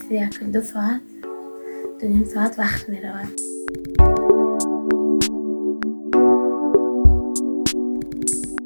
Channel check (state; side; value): inverted; both; correlation -1.00